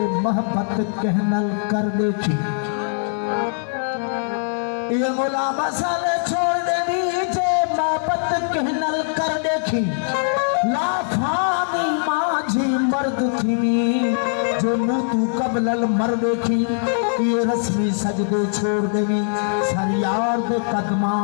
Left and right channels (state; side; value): silent; right; digital silence